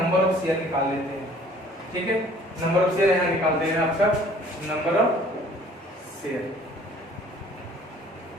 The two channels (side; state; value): both; normal; correlation 0.54